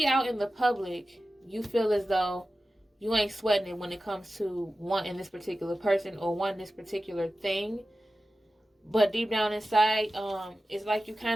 out in the public, you feel as though you ain't sweating it when it comes to wanting this particular person or wanting this particular thing. But deep down inside, it's like you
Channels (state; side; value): normal; both; correlation 0.94